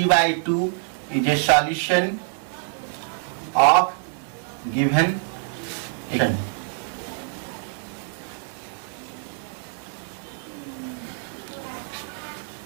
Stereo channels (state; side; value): silent; left; 55 dB below the other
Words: is a solution of given equation.